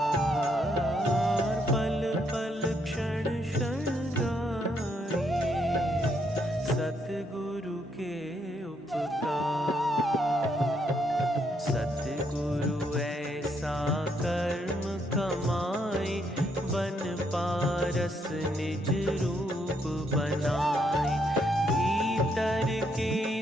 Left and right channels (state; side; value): normal; both; correlation 0.74